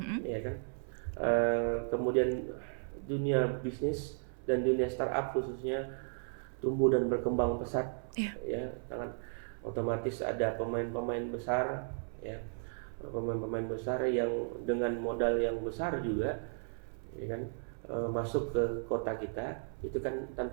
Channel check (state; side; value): silent; left; 54 dB below the other